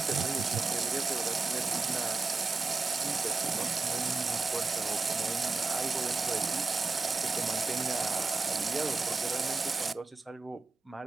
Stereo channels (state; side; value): quieter; left; 4.0 dB